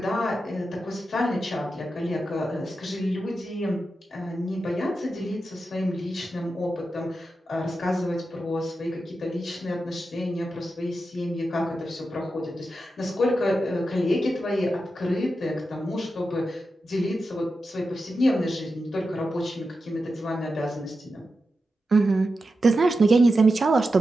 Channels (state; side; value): normal; both; correlation 0.90